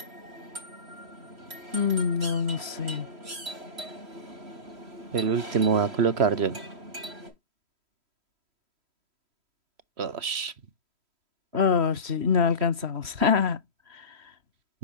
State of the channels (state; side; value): late; left; 3.1 ms